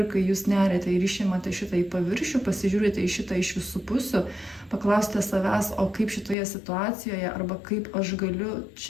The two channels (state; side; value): drops out; right; at 6.4 s